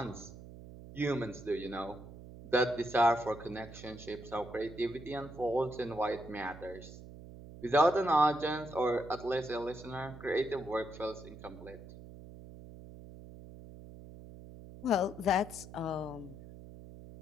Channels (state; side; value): noise; right; hum, 15 dB below the sound